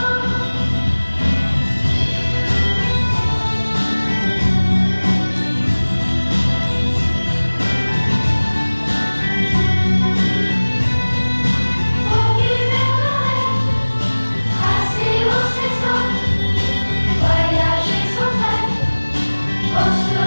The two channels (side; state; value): both; inverted; correlation -1.00